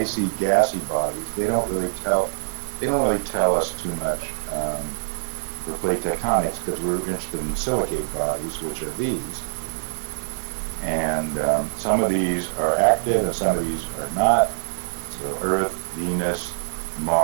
gassy bodies. They don't really tell us too much for plate tectonics, because we're interested in silicate bodies, which are these. And some of these are active and some of these are not. So Earth, Venus,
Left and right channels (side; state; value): left; silent; digital silence